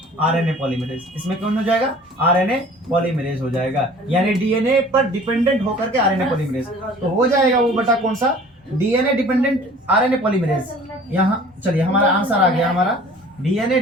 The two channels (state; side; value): normal; both; correlation 0.48